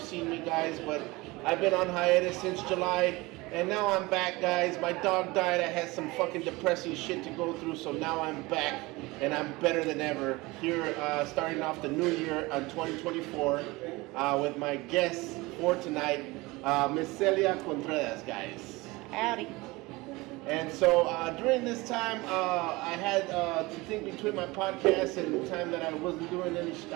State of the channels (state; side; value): quieter; left; 22.3 dB